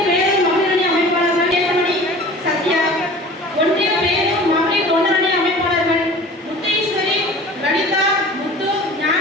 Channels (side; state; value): both; normal; correlation 0.42